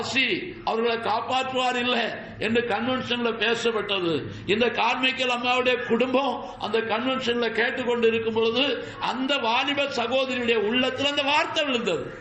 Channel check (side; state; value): both; identical; correlation 1.00